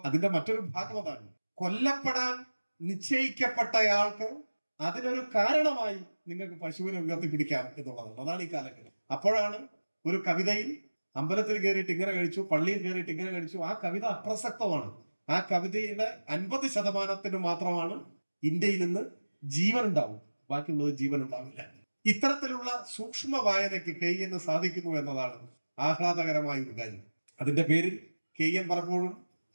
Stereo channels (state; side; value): inverted; both; correlation -1.00